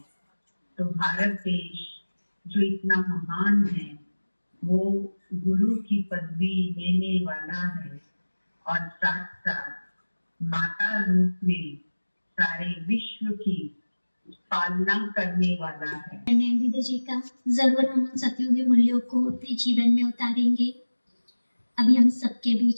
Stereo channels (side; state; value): both; inverted; correlation -1.00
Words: तो भारत देश जो इतना महान है वो गुरु की पदवी लेने वाला है और साथ साथ माता रूप में सारे विश्व की पालना करने वाला है। दीदी जी का जरूर हम उन सतयुगी मूल्यों को अपने जीवन में उतारेंगे। अभी हम सबके